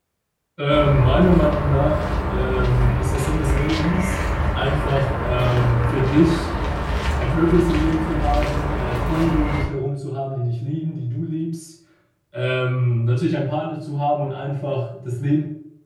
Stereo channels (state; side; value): identical; both; correlation 1.00